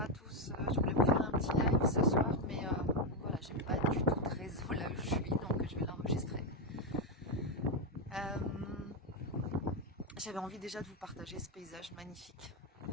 à tous. Je voulais vous faire un petit live ce soir, mais voilà, j'ai pas du tout de réseau là où je suis, donc je vais l'enregistrer. Euh, J'avais envie déjà de vous partager ce paysage magnifique.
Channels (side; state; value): both; normal; correlation 0.06